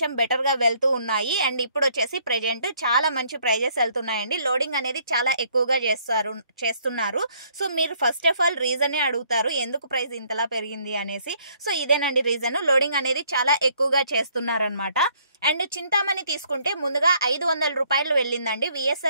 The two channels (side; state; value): both; inverted; correlation -0.65